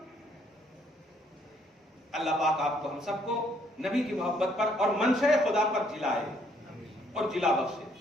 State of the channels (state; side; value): normal; both; correlation 0.67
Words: اللہ پاک آپ کو ہم سب کو نبی کی محبت پر اور منشأ خدا پر جلائے اور جلا بخشے.